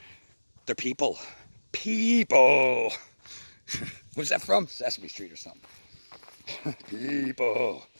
They're people. People. What's that from? Sesame Street or something. People.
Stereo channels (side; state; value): both; inverted; correlation -1.00